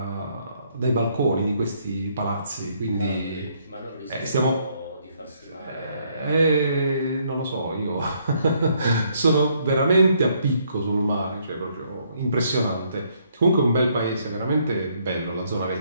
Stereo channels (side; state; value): both; inverted; correlation -0.70